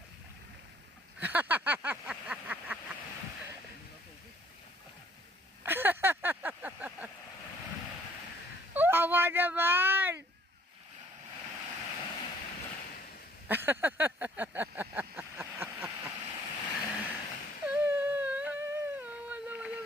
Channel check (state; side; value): normal; both; correlation 0.61